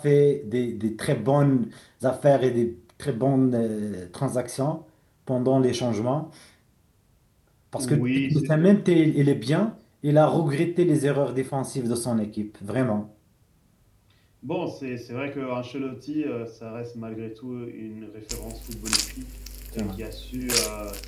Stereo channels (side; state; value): both; identical; correlation 1.00